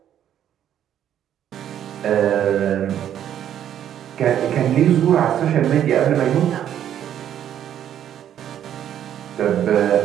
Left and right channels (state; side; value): quieter; left; 10.3 dB